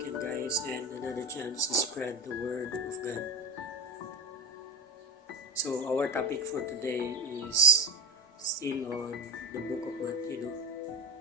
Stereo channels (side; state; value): both; normal; correlation 0.21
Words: guys and another chance to spread the word of God. So our topic for today is still on the book of Matthew.